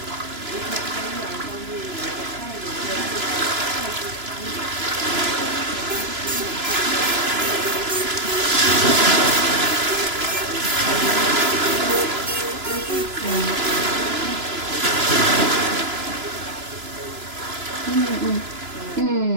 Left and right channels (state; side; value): late; left; 3.0 ms